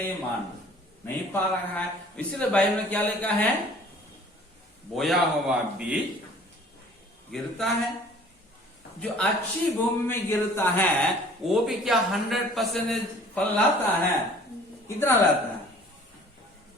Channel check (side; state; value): both; normal; correlation 0.51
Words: मान नहीं पा रहा है। इसलिए बाइबल में क्या लिखा है? बोया हुआ बीज गिरता है, जो अच्छी भूमि में गिरता है वो भी क्या 100% फल लाता है? कितना लाता है?